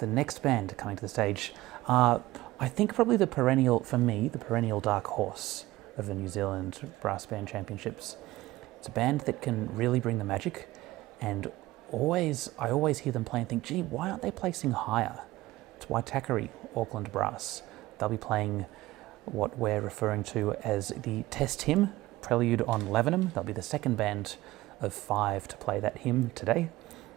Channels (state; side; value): quieter; left; 17.8 dB